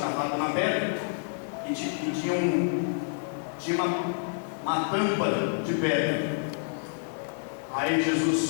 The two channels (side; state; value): right; silent; digital silence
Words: na pedra e tinha uma tampa de pedra. Aí Jesus